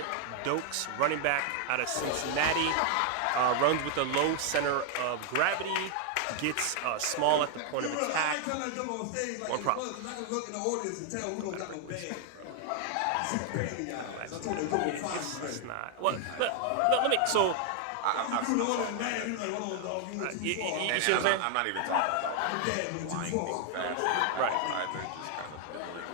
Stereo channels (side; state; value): both; different; correlation 0.00